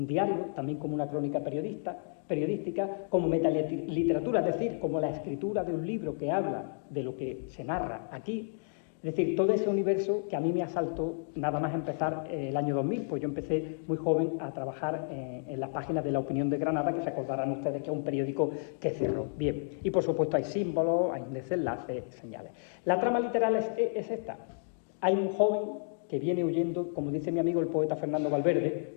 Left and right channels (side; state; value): right; silent; digital silence